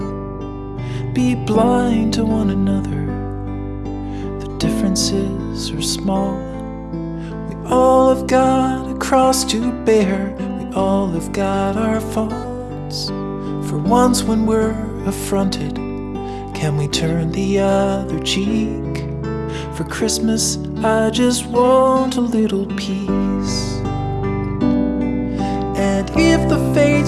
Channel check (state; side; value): identical; both; correlation 1.00